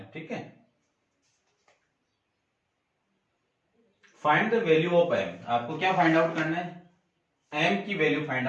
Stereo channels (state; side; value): identical; both; correlation 1.00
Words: ठीक है, find the value of m। आपको क्या फाइंड आउट करना है, m की वैल्यू फाइंड